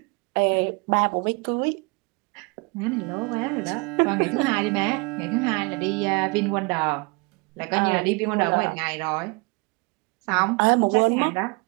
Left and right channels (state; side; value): quieter; left; 28.8 dB